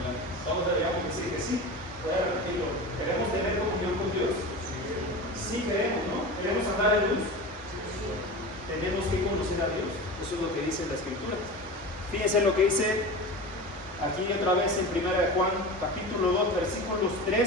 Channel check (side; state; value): both; normal; correlation 0.29